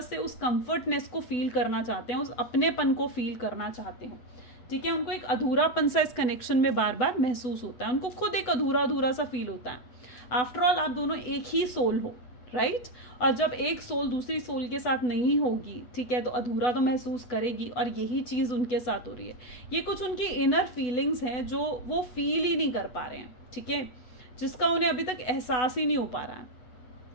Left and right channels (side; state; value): right; late; 8.0 ms